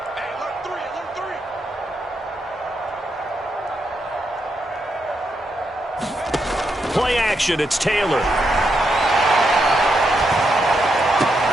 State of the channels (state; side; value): normal; both; correlation 0.81